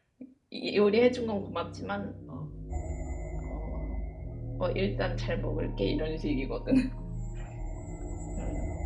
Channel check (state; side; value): identical; both; correlation 1.00